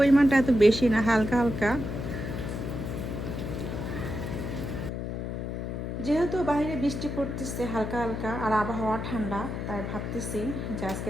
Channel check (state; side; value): noise; left; hum, 4 dB below the sound